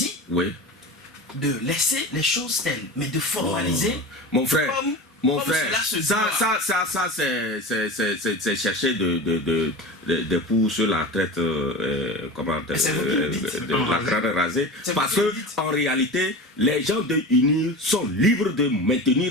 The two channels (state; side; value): normal; both; correlation 0.30